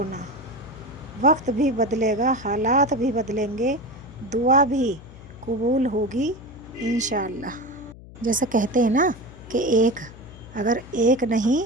وقت بھی بدلے گا، حالات بھی بدلیں گے، دعا بھی قبول ہوگی انشاءاللہ۔ جیسے کہتے ہیں نا کہ اگر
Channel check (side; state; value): left; noise; hum, 18 dB below the sound